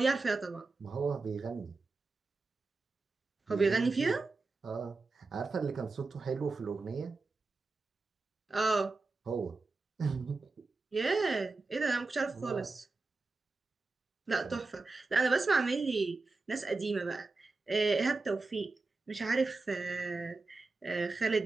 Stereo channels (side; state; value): left; quieter; 3.7 dB